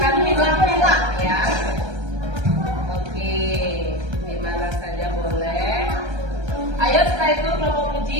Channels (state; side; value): late; left; 1.3 ms